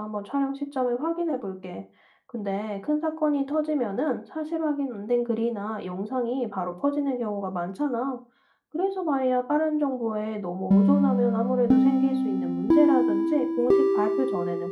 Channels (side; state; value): both; identical; correlation 1.00